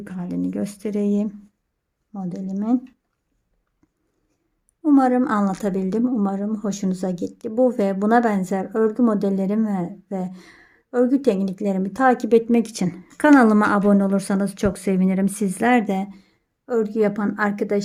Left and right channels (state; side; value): identical; both; correlation 1.00